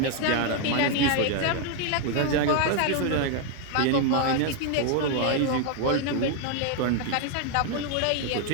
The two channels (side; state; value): both; different; correlation 0.01